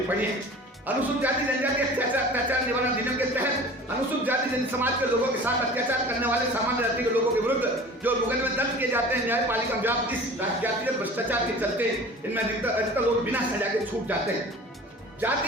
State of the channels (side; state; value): both; normal; correlation 0.41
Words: पड़ी है। अनुसूचित जाति जनजाति अत्याचार निवारण अधिनियम के तहत अनुसूचित जाति जनजाति समाज के लोगों के साथ अत्याचार करने वाले सामान्य जाति के लोगों के विरुद्ध जो मुकदमे दर्ज किए जाते हैं न्यायपालिका व्याप्त इस जातिगत भ्रष्टाचार के चलते इनमें अधिकतर लोग बिना सजा के छूट जाते हैं।